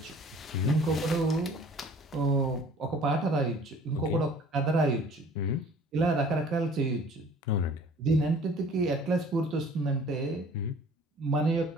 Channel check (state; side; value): normal; both; correlation 0.50